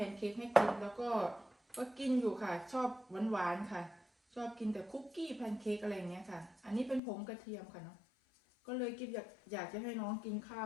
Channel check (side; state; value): right; drops out; at 7.0 s